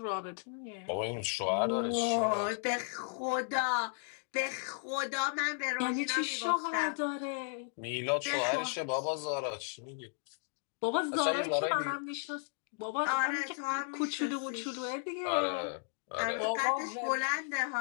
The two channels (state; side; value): silent; right; 55 dB below the other